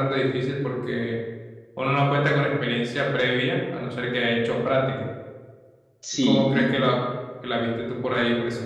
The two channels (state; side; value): identical; both; correlation 1.00